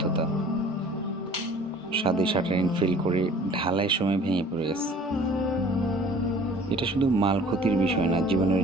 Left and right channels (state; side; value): normal; both; correlation 0.49